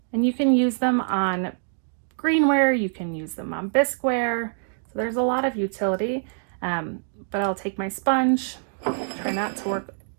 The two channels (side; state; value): left; silent; digital silence